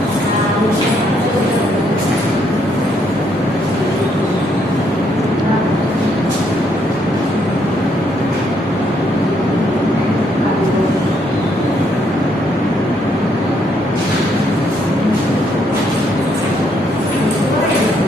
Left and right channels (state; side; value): normal; both; correlation 0.72